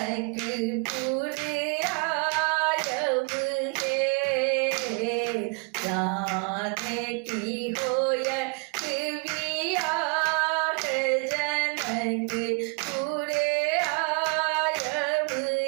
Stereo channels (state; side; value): quieter; left; 32.5 dB